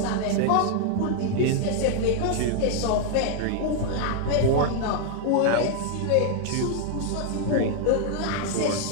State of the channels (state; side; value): different; both; correlation 0.00